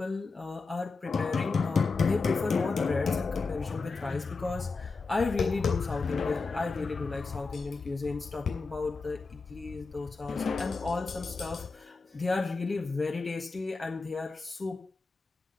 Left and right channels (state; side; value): quieter; right; 4.1 dB